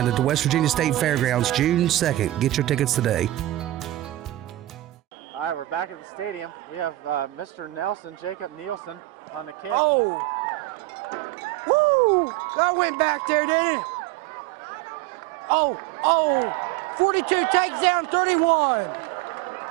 at the West Virginia State Fairgrounds, June 2nd. Get your tickets today. All right, we're back at the stadium. We have Mr. Nelson, Jacob Nielsen, on the kick. Oh. Woo! That went back there, didn't it? Oh. 42 takes down 31.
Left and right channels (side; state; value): left; quieter; 16.1 dB